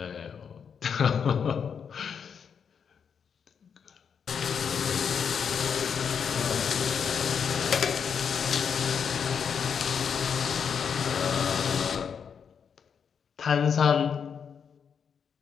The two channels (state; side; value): quieter; right; 6.9 dB